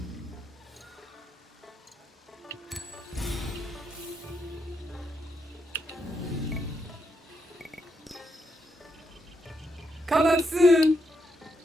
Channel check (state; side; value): normal; both; correlation 0.80